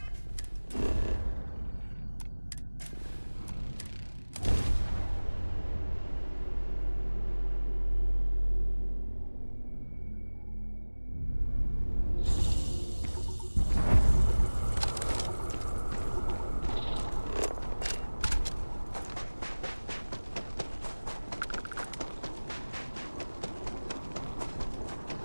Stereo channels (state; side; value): inverted; both; correlation -1.00